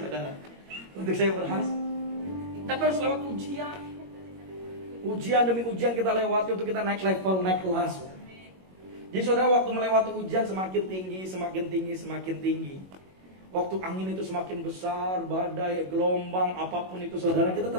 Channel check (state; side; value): late; left; 21 ms